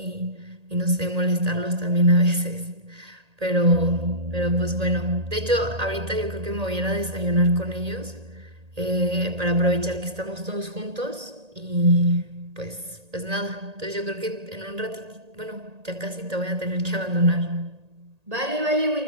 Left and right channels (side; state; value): left; late; 1.8 ms